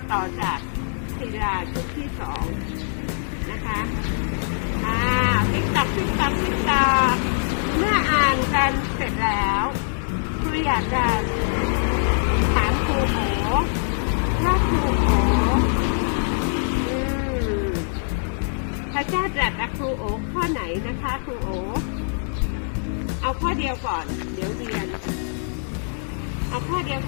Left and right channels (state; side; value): silent; right; digital silence